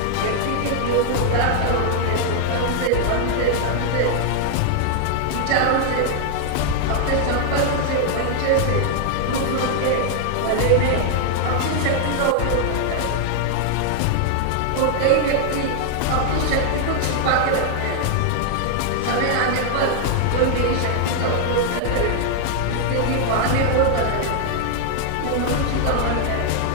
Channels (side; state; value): both; different; correlation 0.00